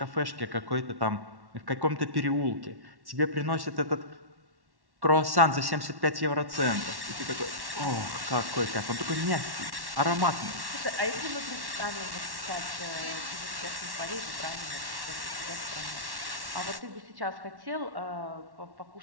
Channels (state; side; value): late; left; 1.1 ms